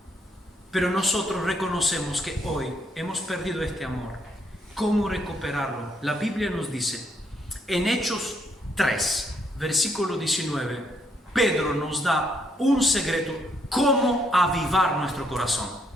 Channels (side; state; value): both; normal; correlation 0.72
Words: Pero nosotros reconocemos que hoy hemos perdido este amor. ¿Cómo recuperarlo? La Biblia nos dice En Hechos 3, versículo 19, Pedro nos da un secreto, cómo avivar nuestro corazón,